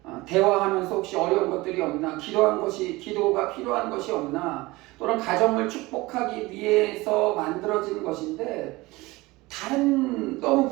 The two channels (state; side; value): quieter; left; 21.2 dB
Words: 대화하면서 혹시 어려운 것들이 없나, 기도가 필요한 것이 없나, 또는 가정을 축복하기 위해서 만들어진 것인데 너무